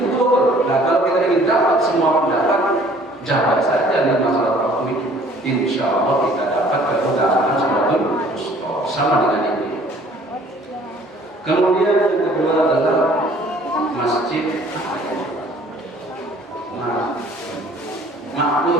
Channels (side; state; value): both; normal; correlation 0.55